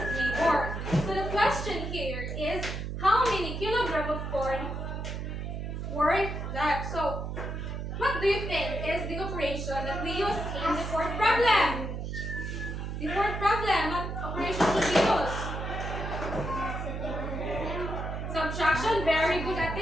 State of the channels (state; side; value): noise; right; hum, 5 dB below the sound